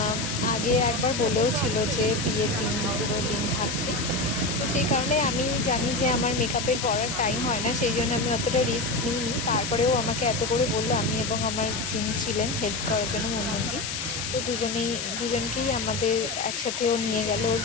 আগে একবার বলেও ছিল যে বিয়ের দিন পুরো দিন থাকতে। তো সেই কারণে আমি জানি যে আমার মেকআপের পরার টাইম হয় না, সেই জন্য আমি অতটা রিস্ক নিইনি। তারপরেও আমাকে এত করে বললো, আমি এবং আমার যিনি ছিলেন হেল্প করার জন্য মুনমুন্দি, তো দুজনকেই আমাদের একসাথেও নিয়ে গেল ওর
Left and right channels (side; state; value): left; noise; hiss, 4 dB below the sound